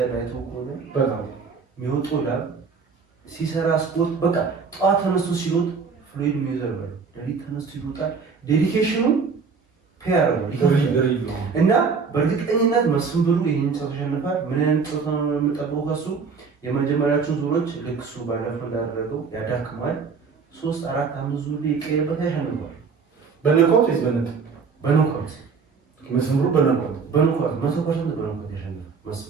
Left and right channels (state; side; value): quieter; left; 5.3 dB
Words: አይተው ከሆነ በጣም የሚወጣው ላብ ሲሰራ ስፖርት በቃ ጠዋት ተነስቶ ሲሮጥ ፍሎይድ ሜይዌዘር ነው። ሌሊት ተነስቶ ይሮጣል። ዴዲኬሽኑ ፔር ነው እና በእርግጠኝነት መስፍን ብሩ ይሄን ጨዋታ ያሸንፋል። ምን አይነት ጨዋታ ነው የምጠብቀው ከሱ? የመጀመሪያዎቹን ዙሮች ልክ እሱ ባለፈው እንዳደረገው ያዳክማል። 3 4 5 ዙር ይቀየርበት ያሸንፋል። በነቆት ወይስ በነጥብ? በኖካውት መስፍን ብሩ በነቆት 100% በኖካውት ያሸንፋል